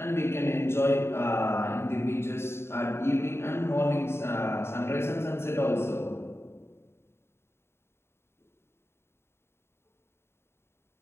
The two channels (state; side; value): late; right; 0.12 ms